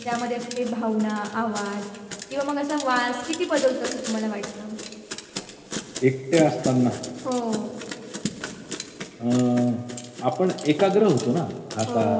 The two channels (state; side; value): identical; both; correlation 1.00